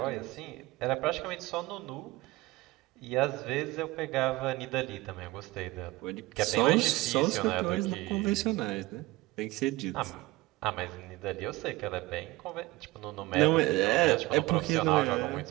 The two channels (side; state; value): left; quieter; 20.2 dB